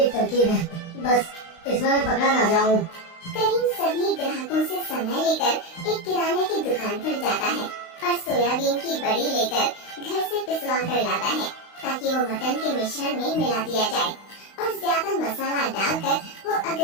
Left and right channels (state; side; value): late; right; 35 ms